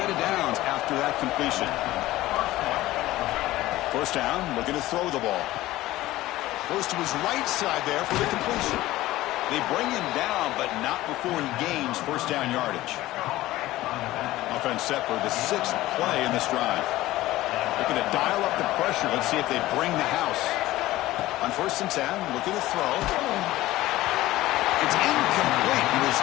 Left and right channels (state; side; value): quieter; right; 16.6 dB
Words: of downs after that completion. 1st down, looking to throw the ball. Goes to his right side there for the completion. They bring him down, but not before he gains 1st down yardage. Offense set for the 6th play in this drive. Looking to dial up the pressure. Let's see if they bring the house. On 1st and 10, looking to throw. It's incomplete. He was